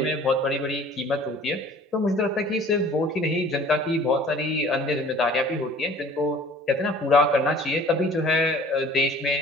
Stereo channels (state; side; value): normal; both; correlation 0.49